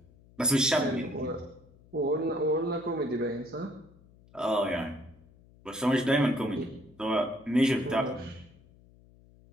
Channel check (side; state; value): left; noise; hum, 26 dB below the sound